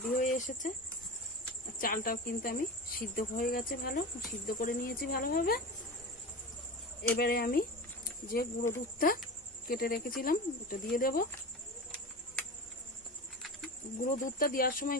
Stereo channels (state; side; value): normal; both; correlation 0.28